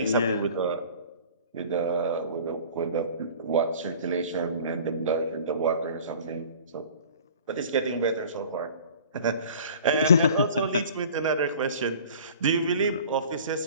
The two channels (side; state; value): both; inverted; correlation -0.45